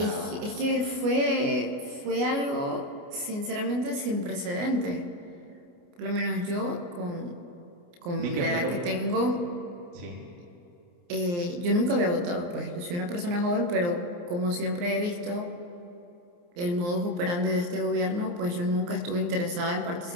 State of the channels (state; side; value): late; left; 29 ms